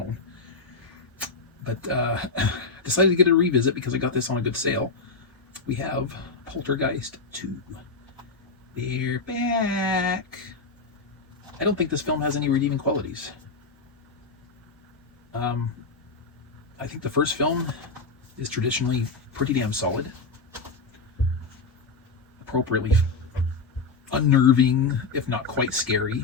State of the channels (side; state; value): right; quieter; 4.0 dB